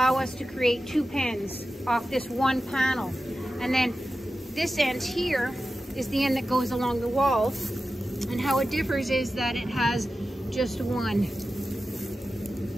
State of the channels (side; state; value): both; normal; correlation 0.93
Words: us to create 2 pens off this one panel. And then this end here is the end that goes along the walls, and how it differs is that it has just one